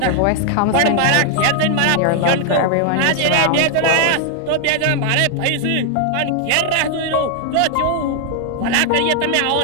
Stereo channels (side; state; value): both; different; correlation 0.00